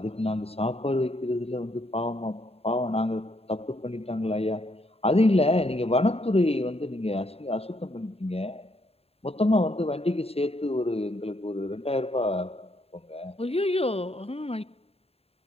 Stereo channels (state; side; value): late; right; 0.29 ms